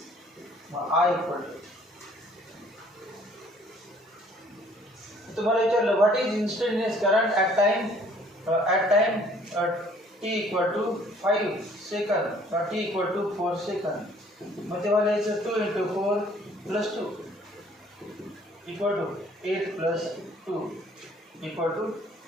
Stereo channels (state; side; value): normal; both; correlation 0.58